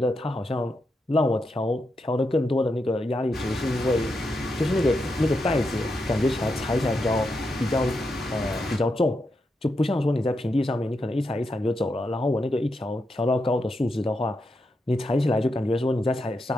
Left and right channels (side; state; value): both; normal; correlation 0.85